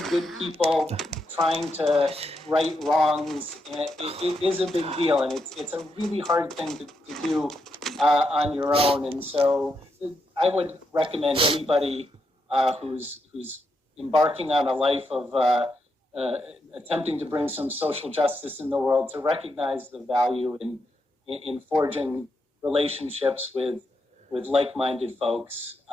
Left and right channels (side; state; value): both; normal; correlation 0.82